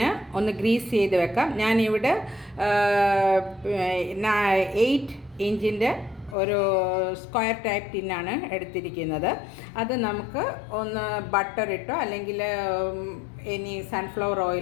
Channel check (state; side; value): drops out; right; at 6.4 s